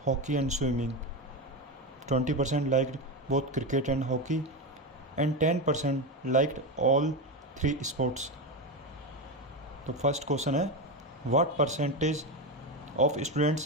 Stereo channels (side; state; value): both; normal; correlation 0.16